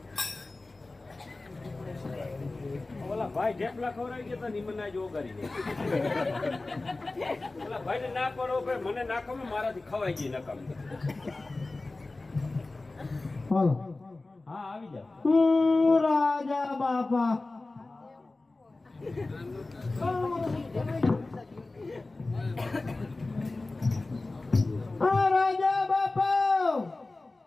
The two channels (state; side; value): quieter; right; 3.2 dB